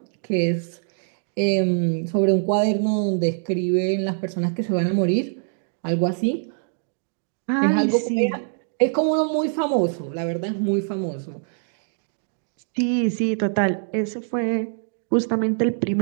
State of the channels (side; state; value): left; silent; digital silence